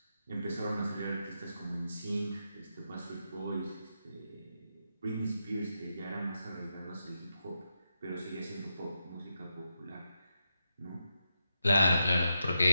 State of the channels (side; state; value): both; inverted; correlation -0.85